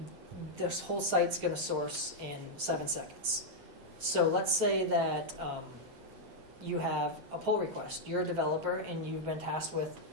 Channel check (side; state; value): left; late; 8.1 ms